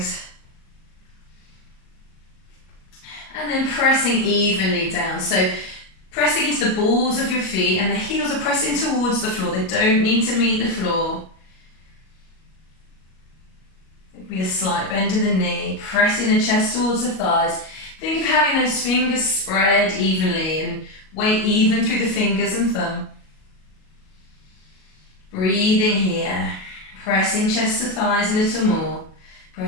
And then pressing evenly down. So pressing into the balls of your feet, and the heels are pressing towards the floor. They don't need to meet the floor. It'll be a slight bend in the knee, pressing the chest towards the thighs. Think of having those fingers spread evenly and weight even through the fingers and thumb. Breathing here, pressing chest to thighs a little more,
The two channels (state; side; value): late; right; 37 ms